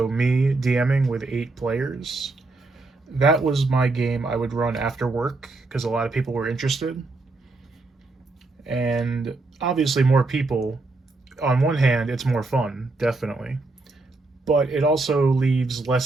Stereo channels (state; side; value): quieter; left; 3.4 dB